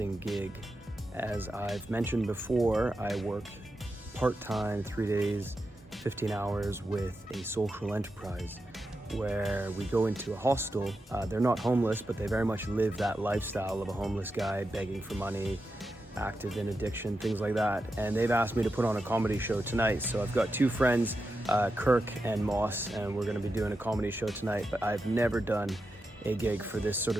gig. As I've mentioned before, I work part-time, 3 days, 15 hours with a social enterprise where we go into a hostel. They're not homeless, but they very much live that lifestyle of a homeless guy begging for money, active in addiction, things like that. And they've asked me to put on a comedy show tonight. So I've got two friends, Kirk and Moss, and we're gonna be doing a comedy show tonight, but I've never done a gig for this sort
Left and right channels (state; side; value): normal; both; correlation 0.88